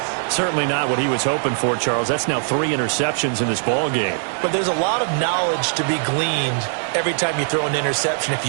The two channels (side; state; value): left; silent; digital silence